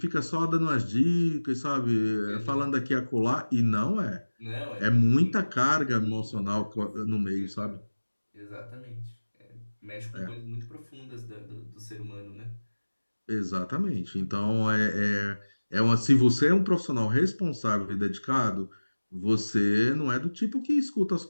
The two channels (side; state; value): both; inverted; correlation -1.00